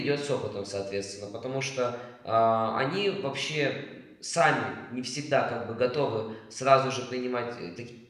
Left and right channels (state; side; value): identical; both; correlation 1.00